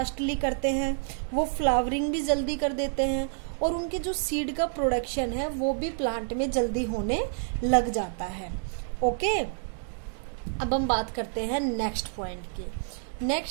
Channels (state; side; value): silent; left; digital silence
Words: करते हैं, वो फ्लावरिंग भी जल्दी कर देते हैं, और उनके जो सीड का प्रोडक्शन है वो भी प्लांट में जल्दी होने लग जाता है। ओके, अब हम बात करते हैं नेक्स्ट पॉइंट की।